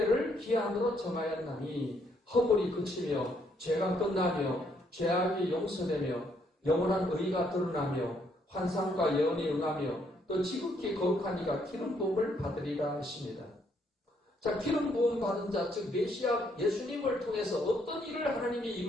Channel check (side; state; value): both; normal; correlation 0.71